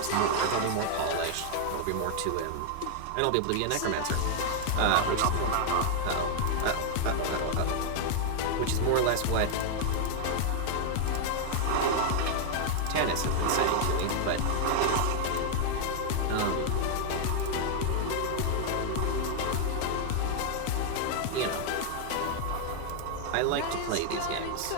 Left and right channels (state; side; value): different; both; correlation 0.00